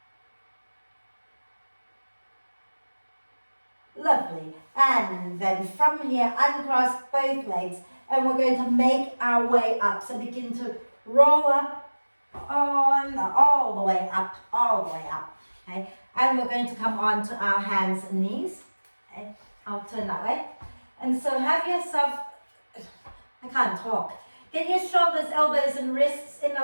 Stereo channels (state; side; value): inverted; both; correlation -1.00